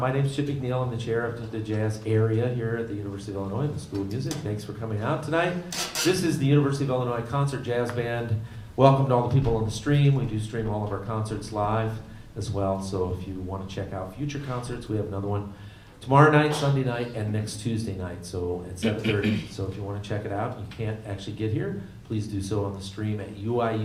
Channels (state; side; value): identical; both; correlation 1.00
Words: name's Chip McNeil. I'm the chair of the jazz area here at the University of Illinois, the School of Music. Thanks for coming out tonight. This is the University of Illinois Concert Jazz Band. Welcome to all the people on the stream. We do stream all of our concerts live as well. So if you want to check out future concerts, we have another one tomorrow night, Sunday night, and next Tuesday night. So at 7:30. So if you want to check it out, you can't actually get here, please do so on the stream at